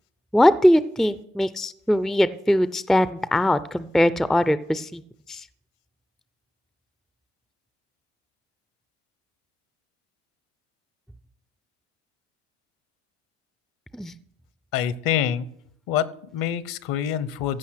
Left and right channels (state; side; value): normal; both; correlation 0.86